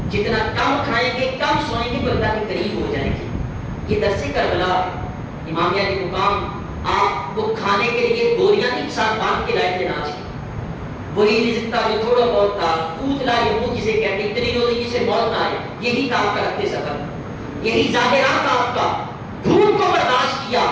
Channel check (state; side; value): identical; both; correlation 1.00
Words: جتنا کم کھائیں گے کم سوئیں گے تو اللہ کے قریب ہو جائیں گے۔ یہ درس کربلا امامیہ علی مقام آپ کو کھانے کے لیے گولیاں نہیں ساتھ باندھ کے لائے تھے ناچ کے، وہی رزق تھا جو تھوڑا بہت تھا، قوت لا یموت جسے کہتے ہیں، اتنی روزی جسے موت نہ آئے، یہی تھا آپ کا رکھتے سفر، یہی ظاہرات تھا آپ کا۔ بھوک کو برداشت کیا،